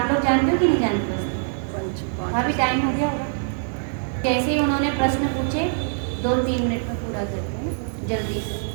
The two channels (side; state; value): left; silent; 60 dB below the other